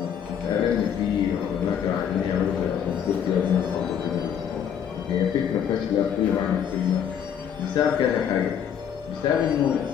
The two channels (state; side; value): quieter; right; 8.5 dB